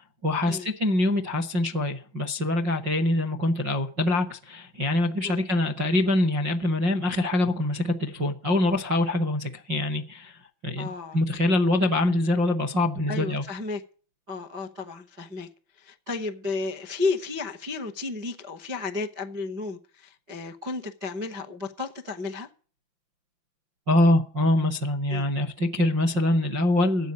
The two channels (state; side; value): late; left; 5.5 ms